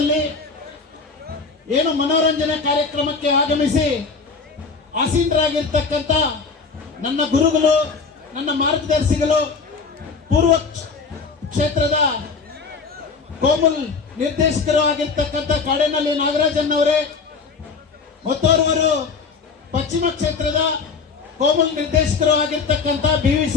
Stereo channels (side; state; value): right; quieter; 4.8 dB